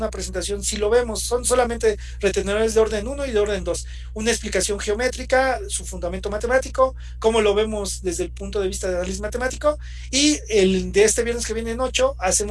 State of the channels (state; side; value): identical; both; correlation 1.00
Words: presentación, sí lo vemos. Son solamente retenedores de orden 1 y de orden 2. Una explicación geométrica, su fundamento matemático, cómo lo vemos desde el punto de vista de análisis matemático. Y el de este viernes que viene en 8,